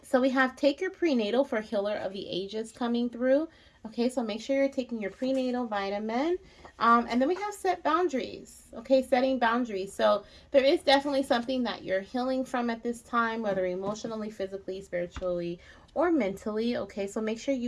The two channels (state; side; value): identical; both; correlation 1.00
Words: So we have take your prenatal for Healer of the Ages coming through. Okay, so make sure you're taking your prenatal vitamin. And then we have set boundaries. Okay, setting boundaries. So there is definitely something that you're healing from at this time, whether emotionally, physically, spiritually, or mentally. Okay, so make sure